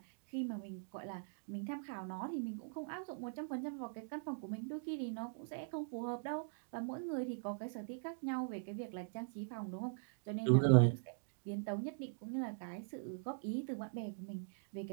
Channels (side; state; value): left; silent; digital silence